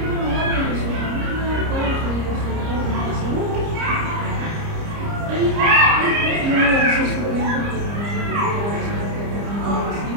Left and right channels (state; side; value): late; left; 30 ms